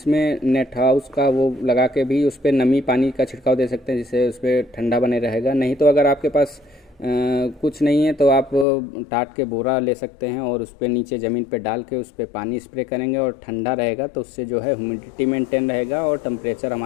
नेट हाउस का वो लगा के भी उस पर नमी पानी का छिड़काव दे सकते हैं, जिससे उस पर ठंडा बने रहेगा। नहीं तो अगर आपके पास कुछ नहीं है तो आप टाट के बोरा ले सकते हैं और उस पर नीचे ज़मीन पे डाल के उस पर पानी स्प्रे करेंगे और ठंडा रहेगा, तो उससे जो है ह्यूमिडिटी मेंटेन रहेगा और टेम्परेचर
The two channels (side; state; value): right; drops out; at 8.7 s